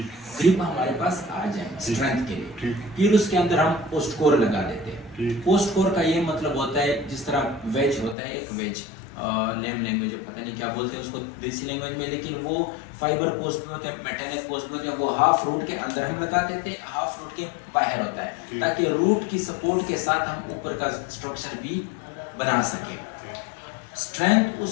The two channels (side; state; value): right; drops out; at 8.2 s